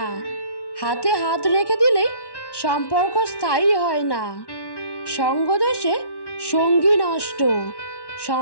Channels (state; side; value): late; right; 1.1 ms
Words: হাতে হাত রেখে দিলেই সম্পর্ক স্থায়ী হয় না। সঙ্গদোষে সঙ্গী নষ্ট,